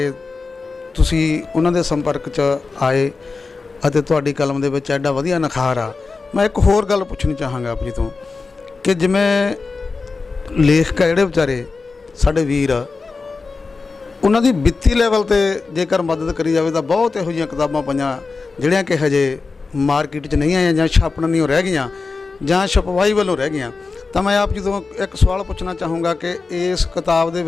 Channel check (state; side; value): quieter; right; 4.2 dB